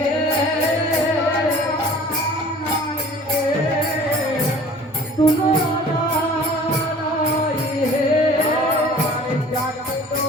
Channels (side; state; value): both; normal; correlation 0.47